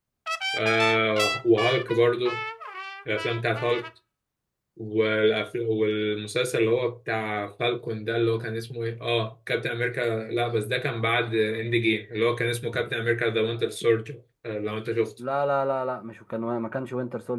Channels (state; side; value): identical; both; correlation 1.00